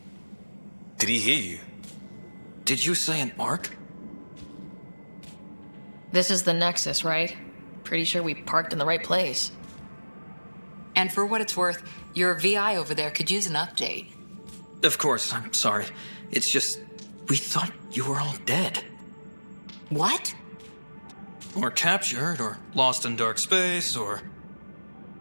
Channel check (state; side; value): inverted; both; correlation -1.00